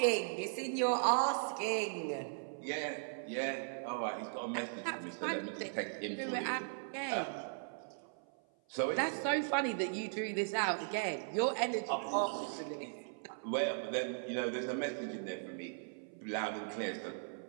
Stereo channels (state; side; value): silent; left; 52 dB below the other